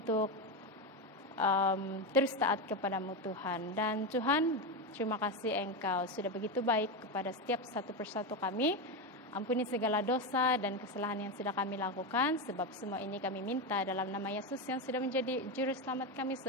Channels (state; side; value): normal; both; correlation 0.13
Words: terus taat kepada-Mu Tuhan. Dan Tuhan, terima kasih Engkau sudah begitu baik kepada setiap satu persatu kami. Ampuni segala dosa dan kesalahan yang sudah kami lakukan, sebab semua ini kami minta dalam nama Yesus yang sudah menjadi juru selamat kami